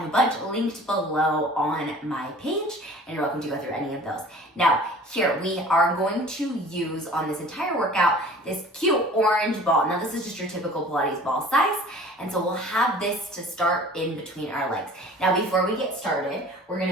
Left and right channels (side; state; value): both; normal; correlation 0.46